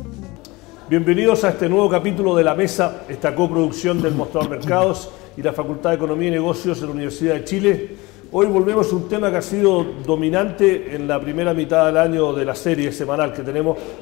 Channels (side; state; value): right; quieter; 22.6 dB